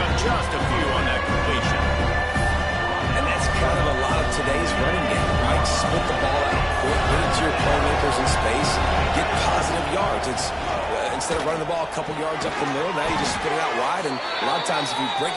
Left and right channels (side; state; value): both; identical; correlation 1.00